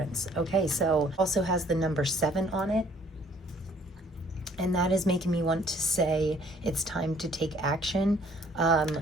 Okay, so also has the number 7 on it. And that is making me want to say it's time to take action.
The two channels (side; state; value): both; normal; correlation 0.60